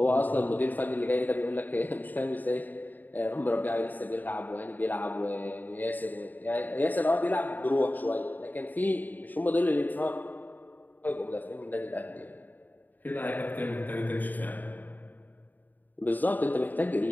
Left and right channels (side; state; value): right; late; 0.086 ms